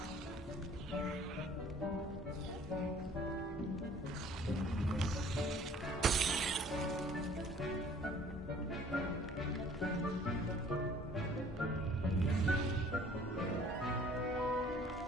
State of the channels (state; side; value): normal; both; correlation 0.54